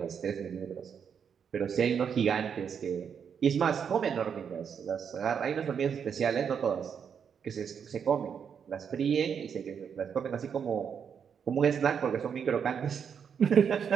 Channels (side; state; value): left; quieter; 7.3 dB